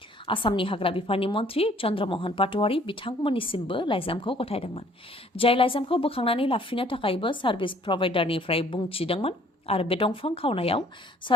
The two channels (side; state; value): both; normal; correlation 0.58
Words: आसामनि हाग्रा बिफाननि मन्त्रि चन्द्रमोहन पाटवारी बिथांमोननिसिमबो लाइजामखौ गथायदोंमोन जाय लाइजामखौ बोखांनानै लाफिननो थाखायबो सार्भिस प्रभाइडारनिफ्राय बुंथिदोंमोन आरो बे दंफां खावनायाव